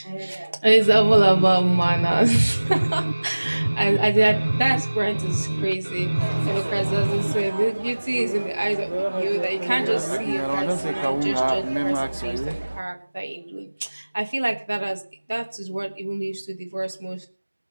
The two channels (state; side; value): inverted; both; correlation -1.00